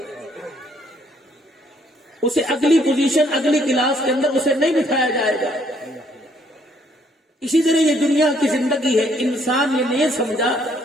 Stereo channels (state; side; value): normal; both; correlation 0.66